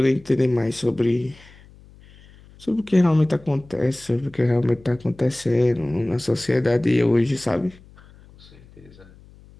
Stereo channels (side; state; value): left; noise; hum, 24 dB below the sound